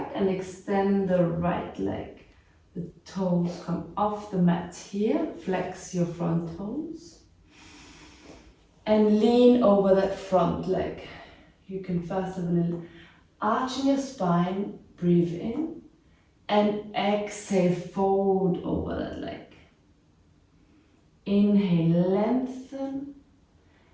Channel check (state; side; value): identical; both; correlation 1.00